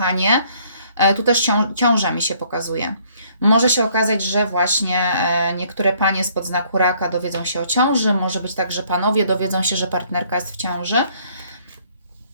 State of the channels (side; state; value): both; inverted; correlation -0.63